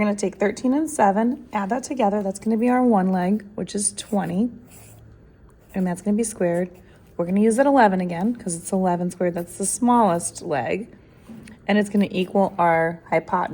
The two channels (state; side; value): identical; both; correlation 1.00